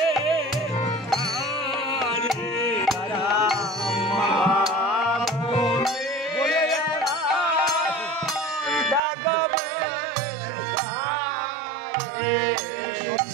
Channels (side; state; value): left; drops out; at 9.0 s